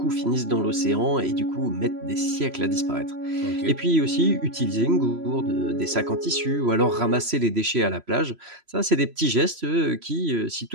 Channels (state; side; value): late; left; 3.0 ms